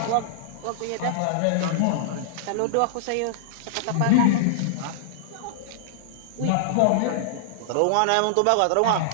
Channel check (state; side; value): different; both; correlation -0.01